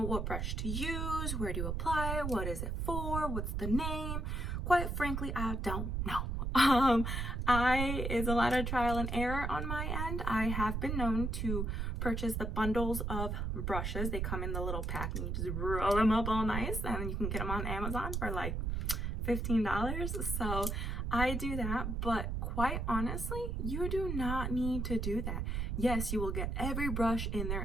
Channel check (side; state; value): right; noise; rumble, 1 dB below the sound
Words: what brush to use, where to apply it, what is it for, what's the name. Quite frankly, I don't know. It's a lot of trial and error on my end. I have been known to purchase the bundles of brushes. They come in the little pack and you just roll them up all nice, and you can get them on Amazon for like $15. So I do that, but quite honestly, you do not need to do that. Yes, you will get every brush in